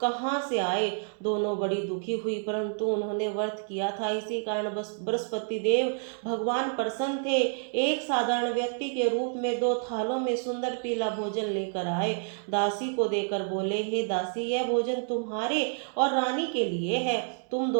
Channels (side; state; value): left; silent; 59 dB below the other